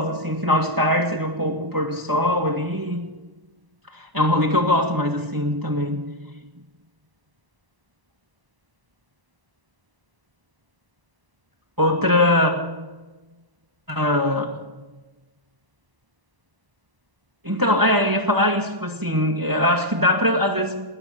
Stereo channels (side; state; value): left; late; 1.0 ms